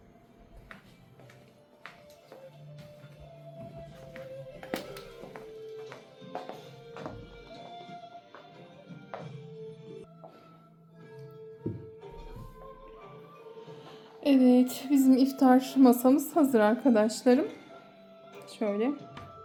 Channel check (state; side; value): identical; both; correlation 1.00